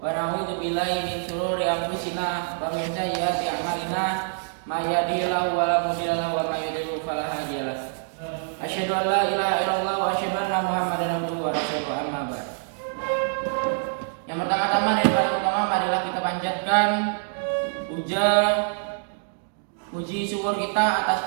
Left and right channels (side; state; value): left; silent; digital silence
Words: na'udzu billahi min shururi anfusina wa min sayyiati a'malina may yahdihillahu fala mudilla lahu wa may yudlil fala hadiya lahu. Asyhadu an la ilaha illallah wa asyhadu anna Muhammadan abduhu wa rasuluhu amma ba'd. Yang pertama-tama dan paling utama marilah kita panjatkan puji syukur kita